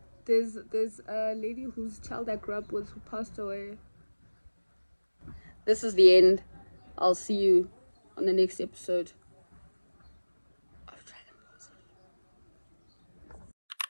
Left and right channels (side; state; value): both; inverted; correlation -1.00